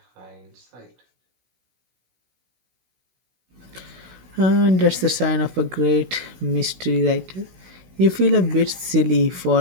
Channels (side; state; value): left; late; 16 ms